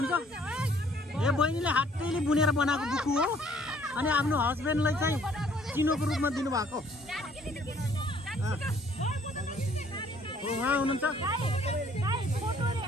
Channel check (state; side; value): normal; both; correlation 0.60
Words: यो बहिनीले हातैले बुनेर बनाएको बुकु हो अनि आफ्नो हस्बेन्डलाई चाहिँ चिनोको रूपमा दिनुभएको उहाँ हुनुहुन्छ